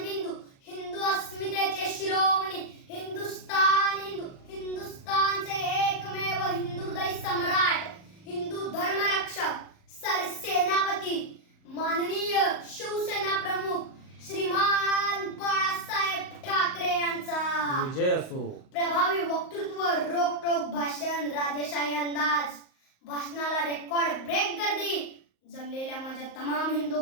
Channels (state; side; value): late; right; 38 ms